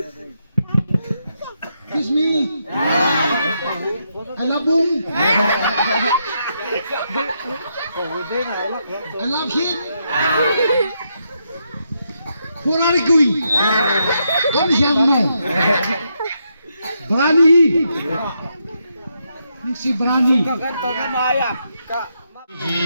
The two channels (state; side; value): inverted; both; correlation -0.80